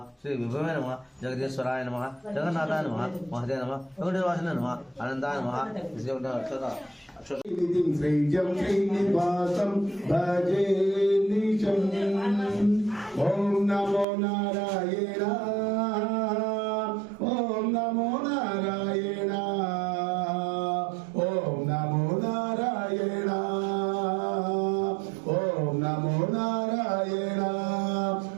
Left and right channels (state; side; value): drops out; left; at 14.1 s